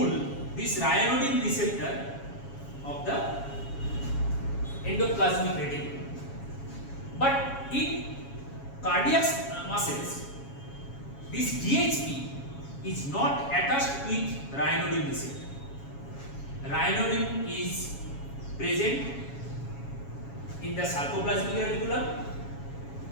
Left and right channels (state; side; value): late; right; 7.2 ms